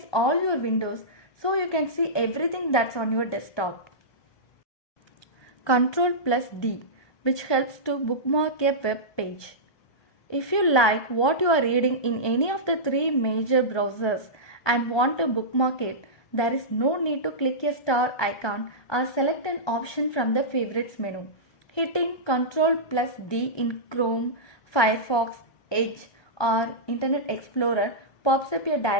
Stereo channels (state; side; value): late; right; 1.2 ms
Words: all your windows so you can see everything that's on your desktop. Ctrl plus D, which helps to bookmark a web page. If you like what you are reading in any of the three major browsers and want to bookmark it, there is no need to click a star icon or select an option from the favorites menu. Hitting Ctrl plus D in Chrome, Firefox, Edge or Internet Explorer pops up a